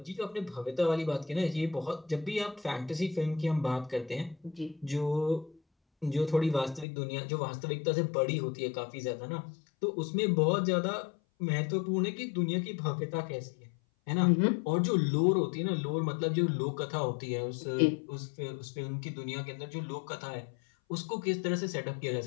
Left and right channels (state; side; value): drops out; right; at 6.9 s